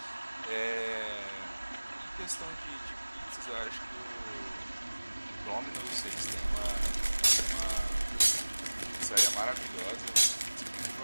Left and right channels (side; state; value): both; inverted; correlation -1.00